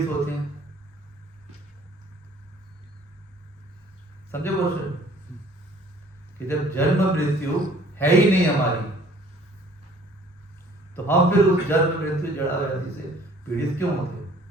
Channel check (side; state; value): both; normal; correlation 0.55